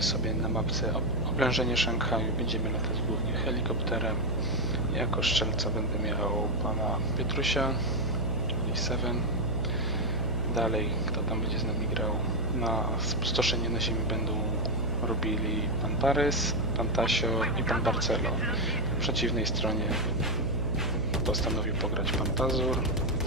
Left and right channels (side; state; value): right; noise; hum, 3 dB below the sound